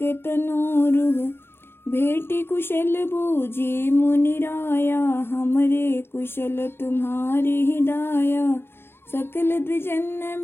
तनोरुह। भेटी कुशल बूझी मुनि राया, हमरे कुशल तुम्हारी हिदाया। सकल द्विजन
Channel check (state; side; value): late; right; 0.11 ms